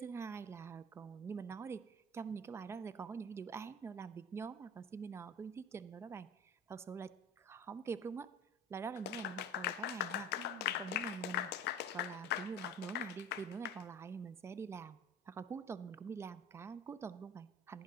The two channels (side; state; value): both; normal; correlation 0.37